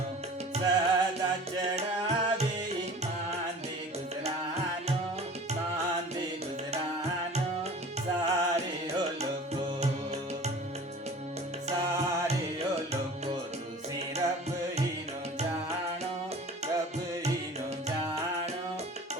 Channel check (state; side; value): normal; both; correlation 0.43